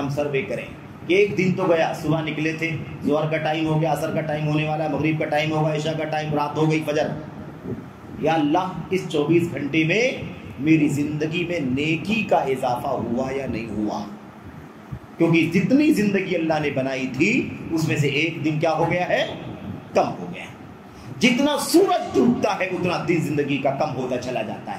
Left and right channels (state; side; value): identical; both; correlation 1.00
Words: سروے کریں. ایک دن تو گیا, صبح نکلے تھے, ظہر کا ٹائم ہو گیا, عصر کا ٹائم ہونے والا, مغرب کا ٹائم ہوگا, عشاء کا ٹائم, رات ہو گئی, فجر. یا اللہ اس 24 گھنٹے میں میری زندگی میں نیکی کا اضافہ ہوا یا نہیں ہوا؟ کیونکہ جتنی زندگی اللہ نے بنائی تھی اس میں سے ایک دن کیا ہو گیا ہے؟ کم ہو گیا. جتنا سورج ڈوبتا ہے اتنا دن زندگی کا کم ہوتا چلا جاتا